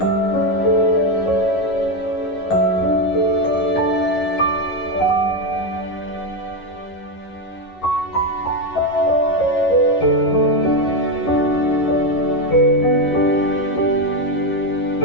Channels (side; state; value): right; late; 11 ms